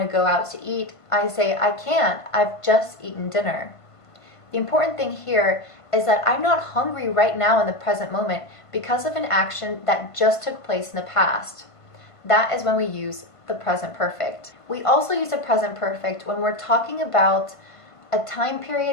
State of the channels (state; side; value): late; right; 1.5 ms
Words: to go out to eat, I say I can't, I've just eaten dinner. The important thing here is that I'm not hungry right now in the present moment because of an action that just took place in the past. That is when we use the present perfect. We also use the present perfect when we're talking about a time